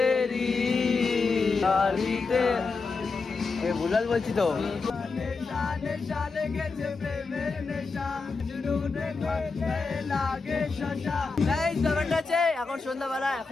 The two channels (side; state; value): right; quieter; 4.3 dB